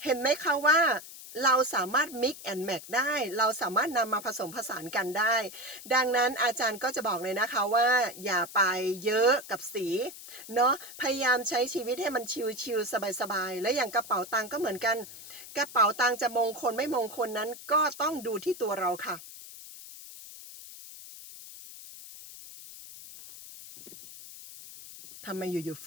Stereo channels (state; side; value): noise; left; hiss, 15 dB below the sound